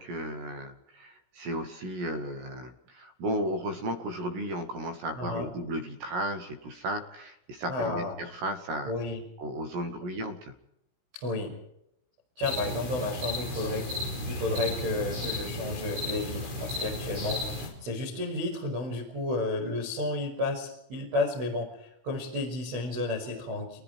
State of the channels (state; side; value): late; left; 16 ms